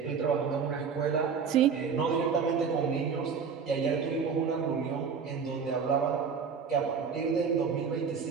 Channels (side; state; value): left; quieter; 6.0 dB